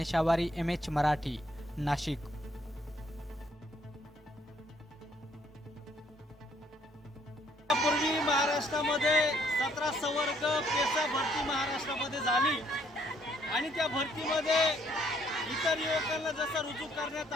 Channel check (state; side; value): normal; both; correlation 0.67